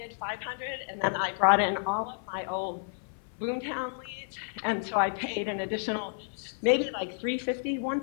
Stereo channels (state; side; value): silent; right; 55 dB below the other